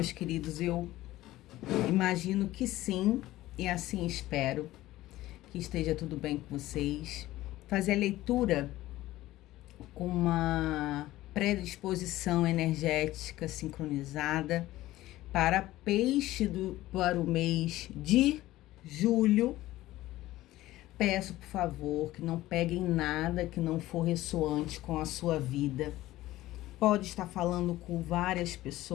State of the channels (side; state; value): right; quieter; 16.2 dB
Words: queridos? Eu imagino que sim, e assim espero que esteja tudo bem com vocês. Fazer a leitura com uma predisposição energética sincronizada para para o mês de julho. Peço, por favor, que não peguem nada que não for ressoante com a sua vida. Pode estar falando com várias